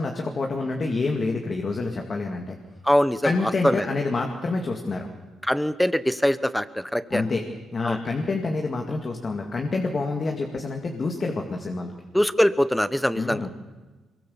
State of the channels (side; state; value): both; normal; correlation 0.94